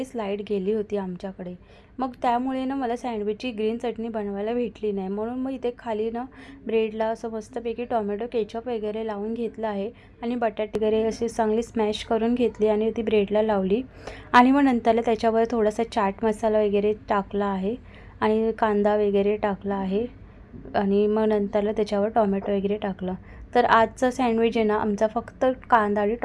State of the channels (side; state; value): both; identical; correlation 1.00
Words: लाईट गेली होती आमच्याकडे। मग त्यामुळे ना मला सँडविचची ग्रीन चटणी बनवायला भेटली नाही, म्हणून मग इथे खाली ना ब्रेडला असं मस्तपैकी टोमॅटो केचप वगैरे लावून घेतलं आहे आणि बटाटे वगैरे असे चांगली स्मॅश करून घेतली आणि ती ब्रेडला लावली आणि मग नंतरला त्याच्यावर थोडासा चाट मसाला वगैरे टाकला आहे आणि कांदा वगैरे टाकला आहे आणि मग नंतरला त्याच्यावर टोमॅटो वगैरे टाकलं। तर आजचा सँडविच आहे ना आमचा फक्त कांदा आणि